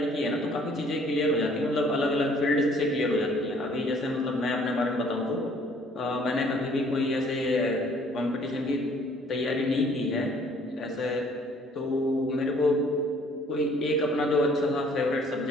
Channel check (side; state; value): both; normal; correlation 0.59